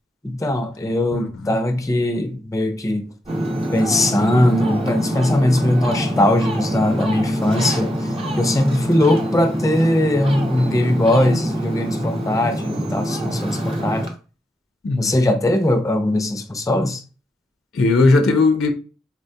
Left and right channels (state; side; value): normal; both; correlation 0.82